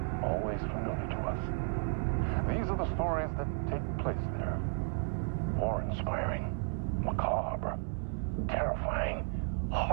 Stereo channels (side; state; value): left; silent; 55 dB below the other